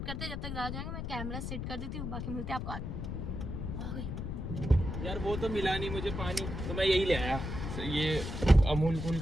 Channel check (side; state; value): left; noise; rumble, 4 dB below the sound